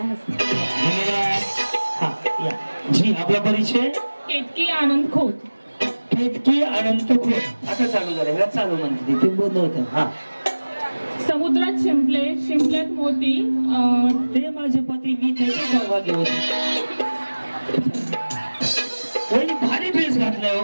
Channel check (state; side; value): inverted; both; correlation -1.00